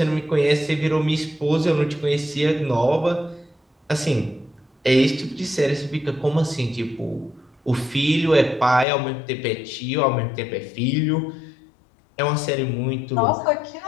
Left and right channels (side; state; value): right; drops out; at 8.8 s